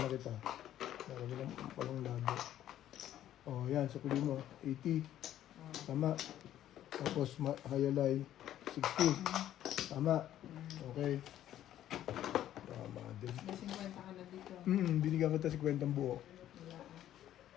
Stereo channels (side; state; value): right; quieter; 12.0 dB